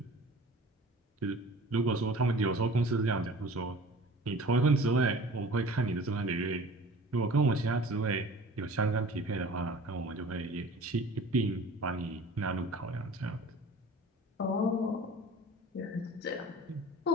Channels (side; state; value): both; normal; correlation 0.43